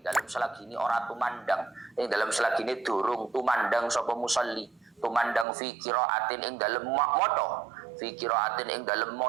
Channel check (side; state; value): left; drops out; at 5.5 s